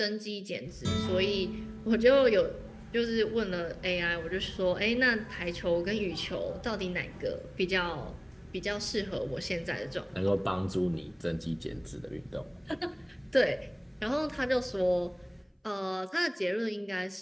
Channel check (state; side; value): identical; both; correlation 1.00